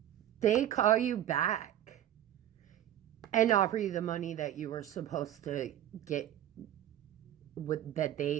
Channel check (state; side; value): quieter; left; 11.9 dB